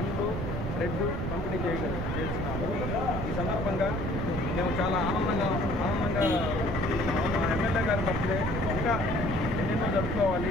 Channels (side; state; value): both; normal; correlation 0.55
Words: బ్రెడ్ పంపిణీ చేస్తున్నాము. ఈ సందర్భంగా మేము చాలా ఆనందంగా మా ఎమ్మెల్యే గారి బర్త్డే ఇంకా ఎన్నెన్నో